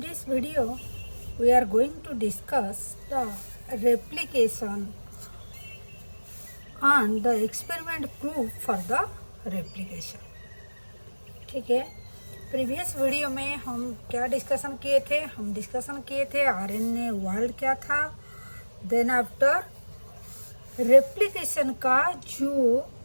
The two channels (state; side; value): inverted; both; correlation -1.00